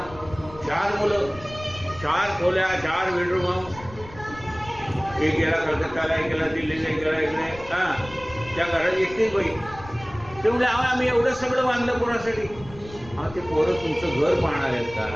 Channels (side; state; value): left; noise; rumble, 17 dB below the sound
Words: 4 मुलं, 4 खोल्या, 4 बेडरूम, एक गेला कलकत्ताला, एक गेला दिल्लीला, एक गेला इकडे. त्या घरात एकटीच बाई. ते म्हणजे आम्ही एवढं सगळं बांधलं कोणासाठी? ते पोरं तुमचं घर पाहणार आहेत